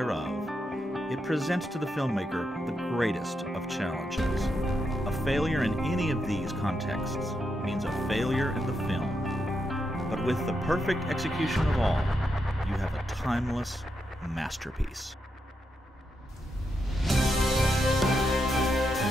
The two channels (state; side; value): normal; both; correlation 0.83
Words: It presents to the filmmaker the greatest of challenges. A failure in any of these contexts means a failure in the film. But with the perfect execution of all, you have a timeless masterpiece.